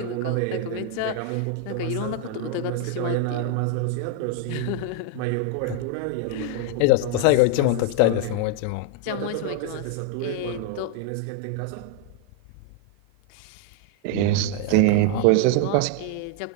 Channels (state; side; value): different; both; correlation 0.00